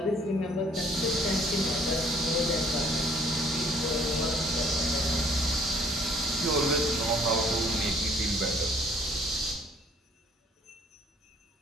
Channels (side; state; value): both; normal; correlation 0.60